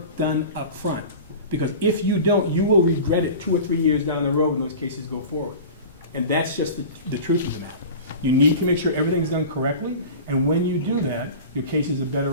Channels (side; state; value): both; inverted; correlation -0.35